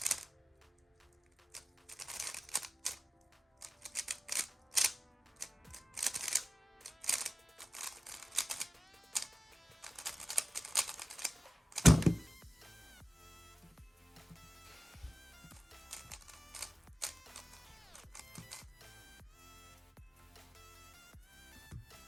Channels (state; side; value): normal; both; correlation 0.96